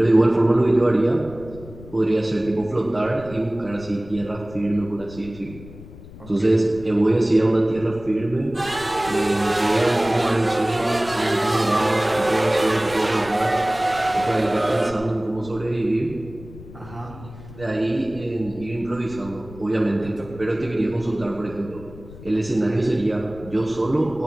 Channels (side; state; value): left; noise; rumble, 17 dB below the sound